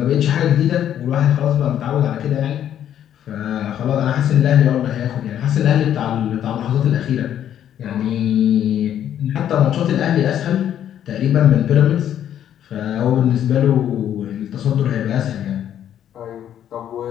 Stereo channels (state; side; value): quieter; right; 10.4 dB